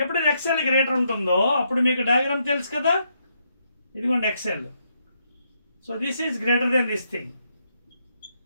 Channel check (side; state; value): both; inverted; correlation -0.77